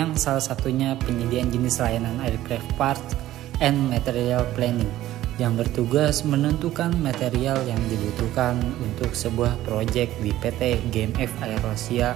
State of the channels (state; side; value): quieter; left; 14.4 dB